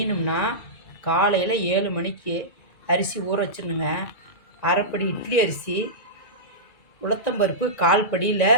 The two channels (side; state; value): right; late; 2.3 ms